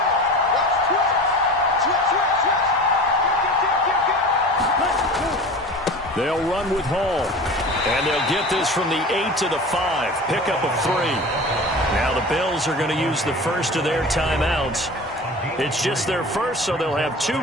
They'll run with Hall. And they'll get this from the 8 to the 5. Pickup of 3. Now the Bills are going to use the first of their timeouts. It's just their first, so they'll have 2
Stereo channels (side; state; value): both; normal; correlation 0.36